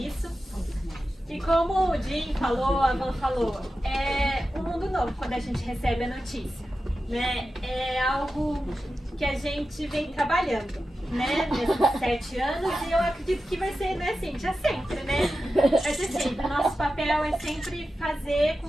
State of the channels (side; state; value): both; normal; correlation 0.92